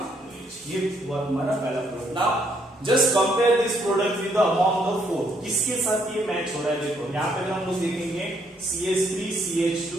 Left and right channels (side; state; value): both; normal; correlation 0.71